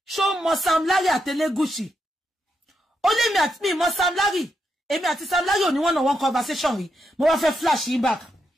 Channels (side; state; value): both; normal; correlation 0.82